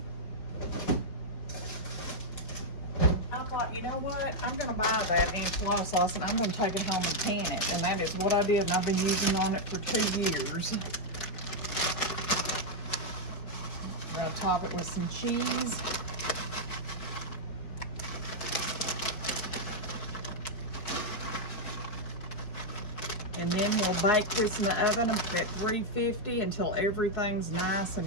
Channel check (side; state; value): right; late; 4.7 ms